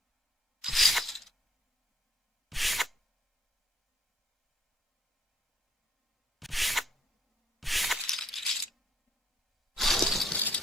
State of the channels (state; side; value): normal; both; correlation 0.64